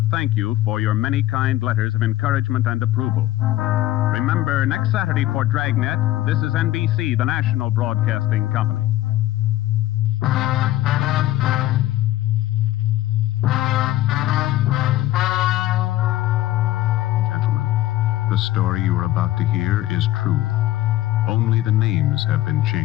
thank you for your many kind letters of encouragement and approval. Remember, next Saturday for Dragnet, this is NBC, the national broadcasting company. Gentlemen, the story you are about to hear is true. Only the names have been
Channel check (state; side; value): quieter; right; 15.5 dB